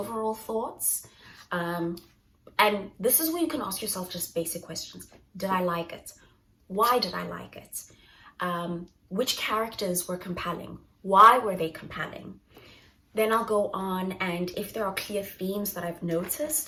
thoughts. And this is where you can ask yourself just basic questions. Did I like it? Why did I like it? Which characters were compelling? Why were they compelling? Then I'll go on, and if there are clear themes that I've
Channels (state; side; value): identical; both; correlation 1.00